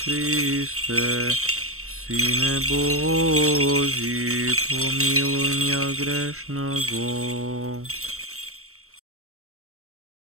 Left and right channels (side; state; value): left; late; 0.63 ms